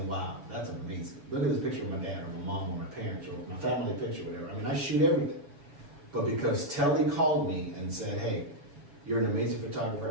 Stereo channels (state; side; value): late; left; 7.1 ms